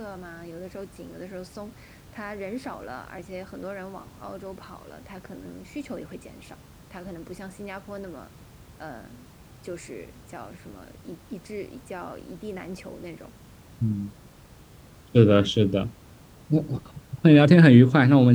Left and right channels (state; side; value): identical; both; correlation 1.00